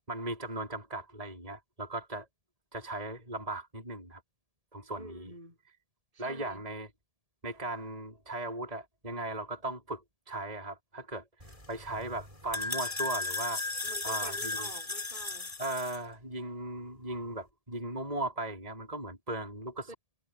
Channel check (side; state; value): left; late; 1.7 ms